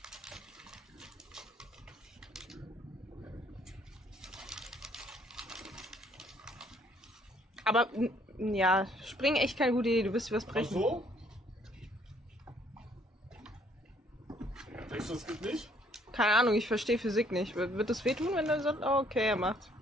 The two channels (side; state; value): both; normal; correlation 0.64